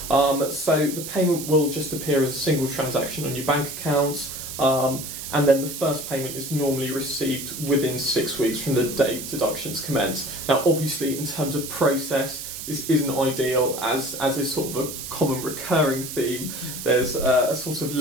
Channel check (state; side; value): noise; right; hiss, 8 dB below the sound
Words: So the payment will just appear as a single transaction on your bank account, and then the first payment is normally received within 6 weeks from the date deductions commence. Now, obviously, in terms of process, this isn't ideal, as is sort of a common recurring theme. There's a sort of